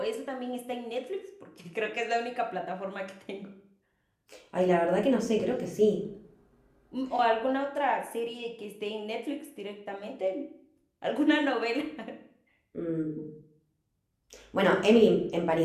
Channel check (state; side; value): identical; both; correlation 1.00